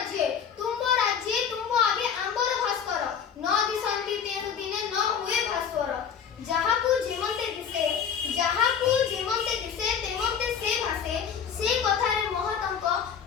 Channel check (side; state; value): right; quieter; 7.5 dB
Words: ତୁମ୍ଭ ଆଗେ ଆମ୍ବର ଭାସ୍କର ନ ଦିଶନ୍ତି ତେଣୁ ଦିନେ ନ ହୁଏ ଭାସ୍କର। ଯାହାକୁ ଯେମନ୍ତେ ଦିଶେ ତେମନ୍ତେ ସେ ଭାସେ ସେ କଥାରେ ମହତଙ୍କ